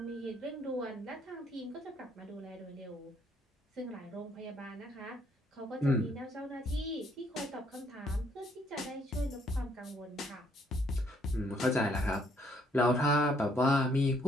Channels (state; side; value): normal; both; correlation 0.68